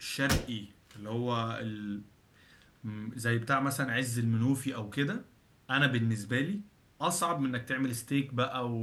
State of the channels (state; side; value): identical; both; correlation 1.00